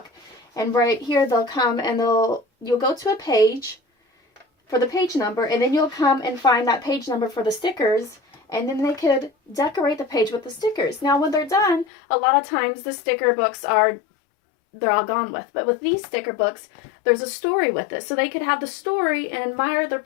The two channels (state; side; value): drops out; right; at 11.9 s